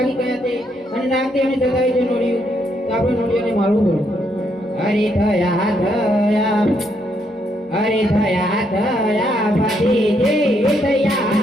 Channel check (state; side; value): normal; both; correlation 0.75